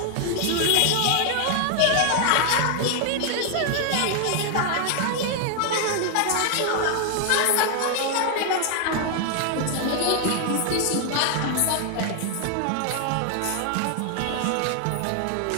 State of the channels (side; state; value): both; different; correlation 0.00